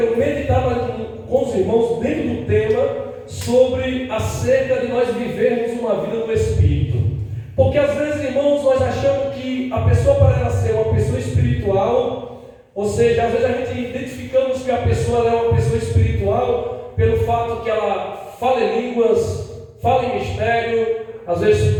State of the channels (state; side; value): identical; both; correlation 1.00